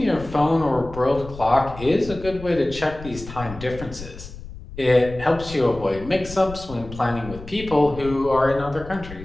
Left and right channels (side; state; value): left; noise; rumble, 14 dB below the sound